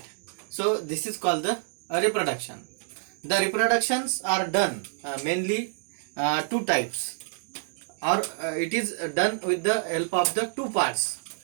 So this is called the reproduction. The reproductions are done mainly two types, or it is done with the help of the two parts.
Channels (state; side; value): silent; left; digital silence